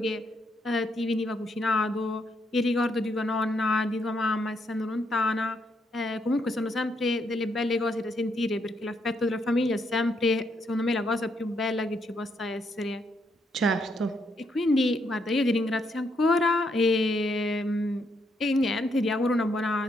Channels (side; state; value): both; normal; correlation 0.76